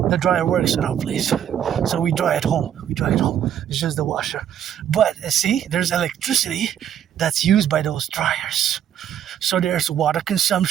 the dryer works at our place. So we dry at home. It's just the washer. But see, there's electricity that's used by those dryers. So there's water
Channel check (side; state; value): left; quieter; 9.8 dB